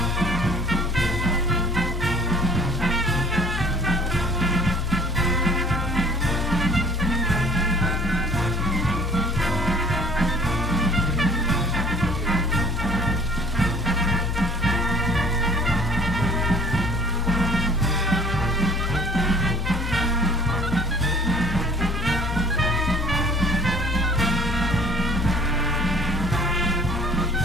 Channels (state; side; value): noise; left; hum, 3 dB below the sound